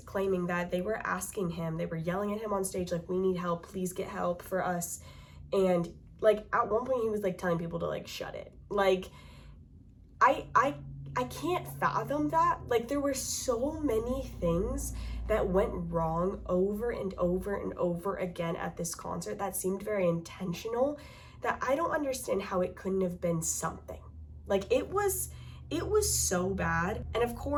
claiming that they were asking him, they were yelling at him on stage, like, we need help, please get help for us. And like at one point he was like telling people to like shut it. Like I I can't fathom that. Like, there were so many things that went wrong over and over and over again at this concert that seemed very intentional, that I don't understand how it couldn't have been something. Like, it was so bad. And of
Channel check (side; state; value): both; identical; correlation 1.00